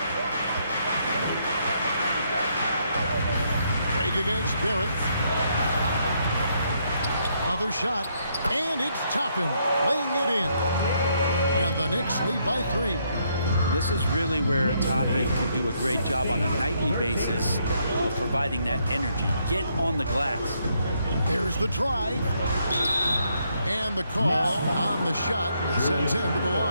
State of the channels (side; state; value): both; inverted; correlation -0.73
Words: Break against Barrett. Another shot. And it's Toppin laying it in. And the Knicks lead by 3. This is really where Toppin can do a great job on a nightly basis of providing that energy. Get on the glass. There's the drive. And the call on the shot that sends him to the